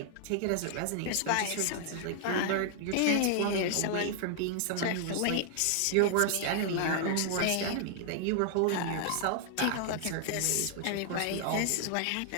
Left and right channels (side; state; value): both; different; correlation 0.00